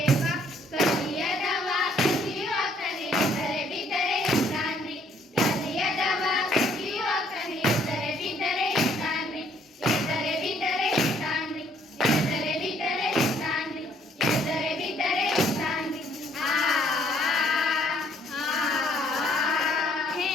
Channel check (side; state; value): both; normal; correlation 0.64